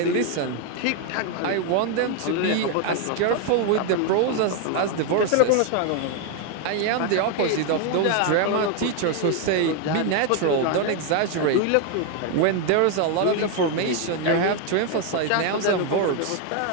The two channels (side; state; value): both; different; correlation 0.01